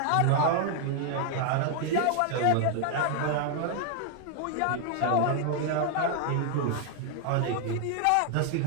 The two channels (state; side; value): different; both; correlation 0.00